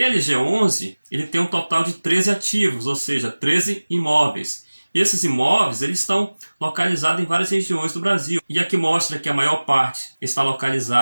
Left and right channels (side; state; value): both; inverted; correlation -1.00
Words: ele tem um total de 13 ativos, ou seja, 13 imóveis. E esses imóveis eles estão localizados em várias regiões do Brasil. E aqui mostra que a maior parte está